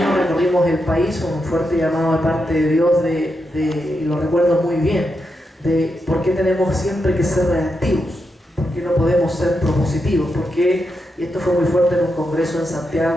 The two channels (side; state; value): both; normal; correlation 0.85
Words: recorrimos el país con un fuerte llamado de parte de Dios, y lo recuerdo muy bien, de por qué tenemos siempre que ser reactivos, por qué no podemos ser propositivos, porque, y esto fue muy fuerte en un congreso en